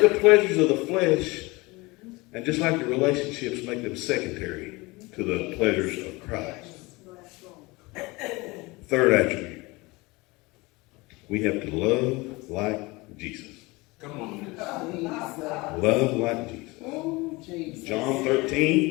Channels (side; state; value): right; quieter; 23.6 dB